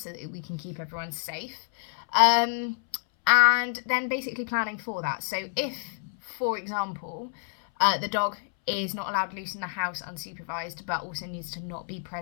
that we can keep everyone safe. And then basically planning for that. So if, for example, the dog is not allowed loose in the house unsupervised, but also needs to not be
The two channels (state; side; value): silent; right; 59 dB below the other